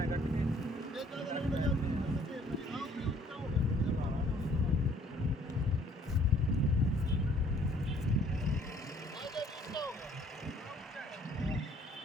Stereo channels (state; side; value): normal; both; correlation 0.59